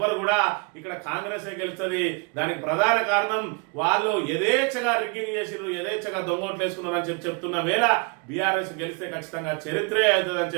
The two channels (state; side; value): quieter; left; 32.7 dB